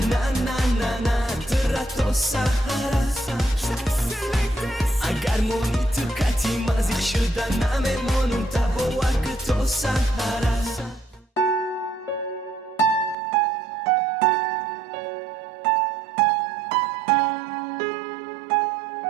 na na na na Terato sahara Agar moni tukati mazik shuda Namemon boar ke to sahara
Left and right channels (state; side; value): drops out; left; at 13.2 s